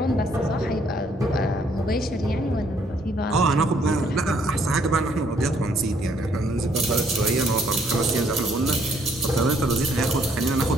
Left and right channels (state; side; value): normal; both; correlation 0.67